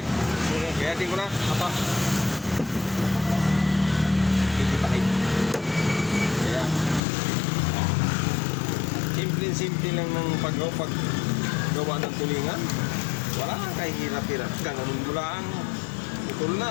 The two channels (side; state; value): right; drops out; at 7.0 s